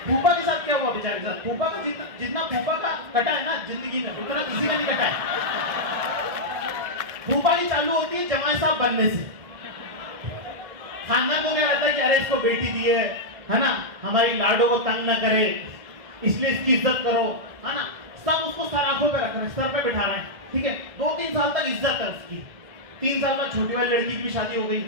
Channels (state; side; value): late; left; 1.6 ms